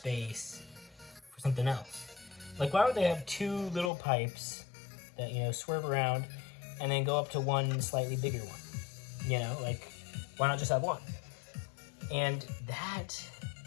for something else. Like, why would they have two little pipes that swerve around and then go up to one slightly bigger one? Like, why not just have one? And that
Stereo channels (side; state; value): right; drops out; at 3.9 s